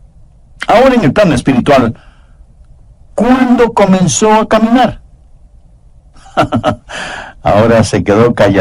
Ahora en el plano espiritual, ¿cuándo comenzó a caminar? Ahora se quedó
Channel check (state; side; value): identical; both; correlation 1.00